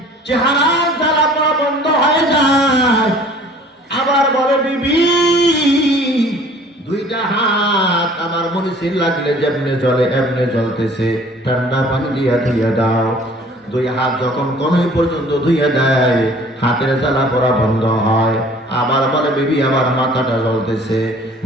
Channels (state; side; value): normal; both; correlation 0.51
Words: চেহারার জ্বালা পড়া বন্ধ হয়ে যায়। আবার বলে, বিবি দুইটা হাত আমার মরিচের লাগলে যেমনে জ্বলে এমনে জ্বলতেছে, ঠান্ডা পানি দিয়া ধুইয়া দাও। দুই হাত যখন কনুই পর্যন্ত ধুইয়া দেয়, হাতের জ্বালা পড়া বন্ধ হয়। আবার বলে, বিবি আমার মাথাটা জ্বলতেছে,